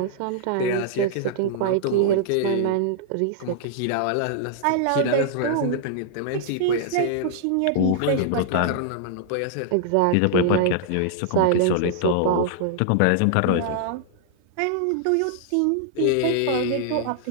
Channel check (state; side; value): different; both; correlation -0.01